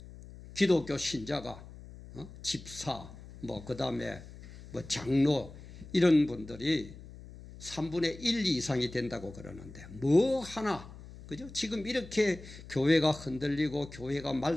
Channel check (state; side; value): noise; left; hum, 16 dB below the sound